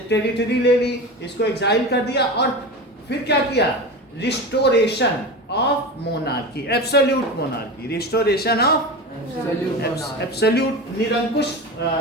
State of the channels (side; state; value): both; normal; correlation 0.27